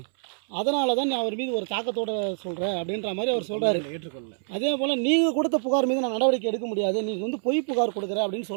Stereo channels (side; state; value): left; silent; 61 dB below the other